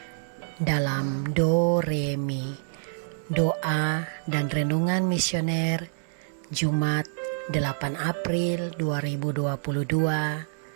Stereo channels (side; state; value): left; silent; digital silence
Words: dalam Do Re Mi, doa dan renungan misioner Jumat 8 April